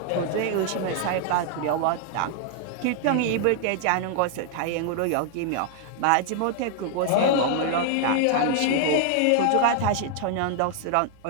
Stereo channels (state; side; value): different; both; correlation 0.00